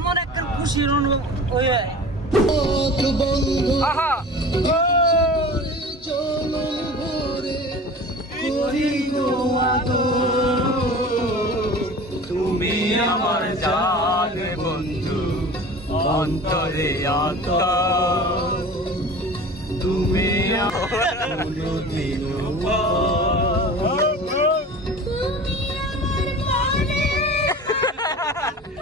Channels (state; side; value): normal; both; correlation 0.38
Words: একটা খুশির অনুভব ওই আহা তুমি আমার জান বন্ধু, অন্তরে অন্তর তুমি